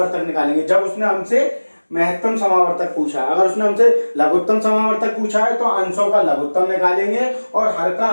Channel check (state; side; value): inverted; both; correlation -1.00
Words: निकालेंगे। जब उसने हमसे महत्तम समावर्तक पूछा, अगर उसने हमसे लघुत्तम समावर्तक पूछा है तो अंशों का लघुत्तम निकालेंगे, और हर का